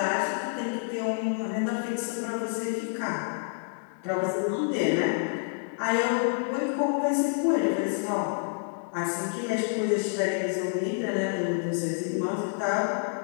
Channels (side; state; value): right; silent; 59 dB below the other